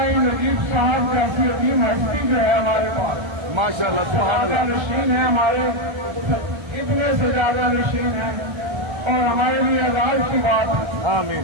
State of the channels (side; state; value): left; late; 1.3 ms